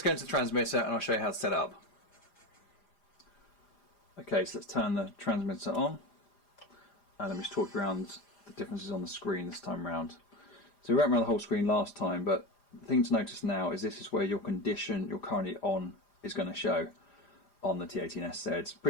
go into the transmitter and I'll show you how to set it up. Okay, so let's turn the transmitter on and let me just talk around the differences on the screen this time around. So we went around the whole screen last time, but the thing to notice now is this is where your condition you're currently on is going to show on the T18SZ. It's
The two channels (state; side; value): late; right; 4.8 ms